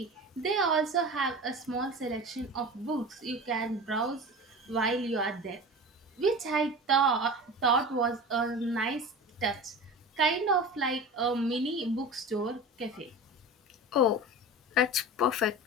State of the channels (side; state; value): both; normal; correlation 0.32